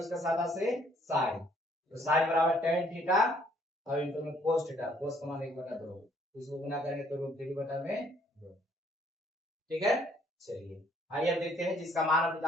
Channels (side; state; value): both; normal; correlation 0.64